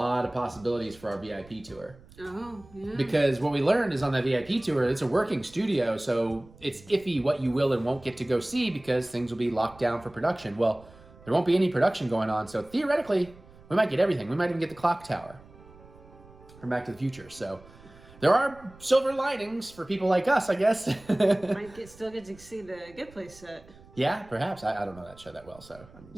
of possibilities for our VIP tour. Oh, yeah. Because what we learned is on that VIP tour, it's a working studio, so it's iffy what you will and won't get to go see because things will be locked down for production. Well, there won't be any production going on, so theoretically, we might get everything. We might even get the clock tower from Back to the Future. So there are silver linings for people like us, I guess. Still get to see the Good Place set. Yeah, perhaps. I don't know that show that well, so.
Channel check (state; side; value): noise; right; rumble, 23 dB below the sound